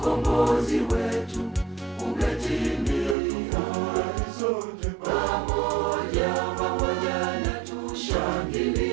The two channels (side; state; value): left; drops out; at 3.2 s